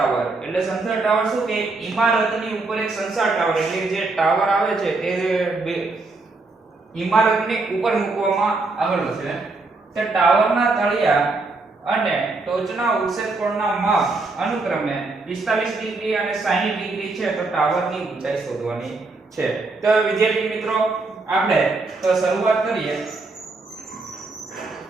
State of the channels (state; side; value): quieter; left; 3.6 dB